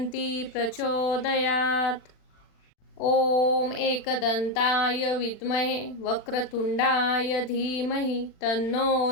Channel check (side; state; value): right; late; 40 ms